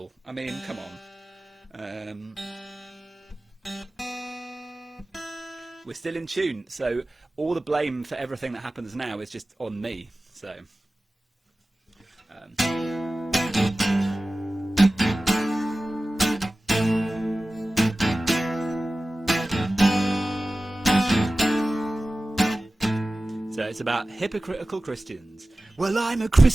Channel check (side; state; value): both; normal; correlation 0.96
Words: I mean, come on. We're still in tune, so all the blame for everything that happens now is just on me. So... So it's about hypocritical Christians. Well, I'm a